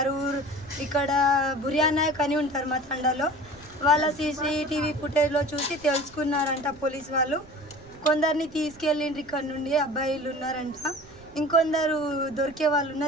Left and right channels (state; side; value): noise; right; rumble, 22 dB below the sound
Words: ఇక్కడ బుర్యానాయక్ అని ఉంటారు మా తండాలో, వాళ్ళ సీసీటీవీ ఫుటేజ్లో చూసి తెలుసుకున్నారంట పోలీస్ వాళ్ళు. కొందరిని తీసుకెళ్ళిండ్రు ఇక్కడ నుండి, అబ్బాయిలు ఉన్నారంట. ఇంకొందరు దొరికే వాళ్ళు